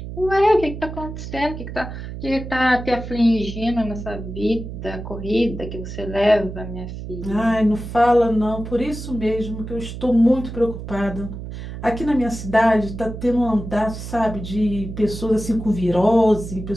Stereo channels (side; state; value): right; noise; hum, 9 dB below the sound